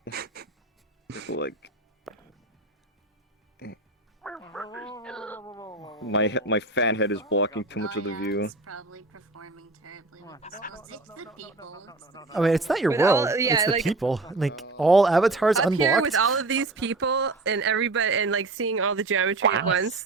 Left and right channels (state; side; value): quieter; left; 3.1 dB